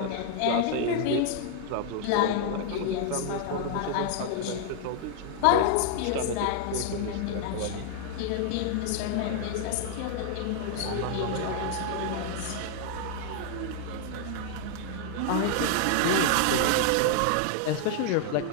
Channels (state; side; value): different; both; correlation 0.00